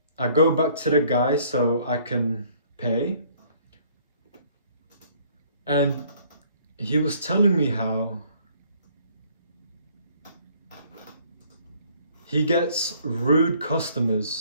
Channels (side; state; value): both; inverted; correlation -0.60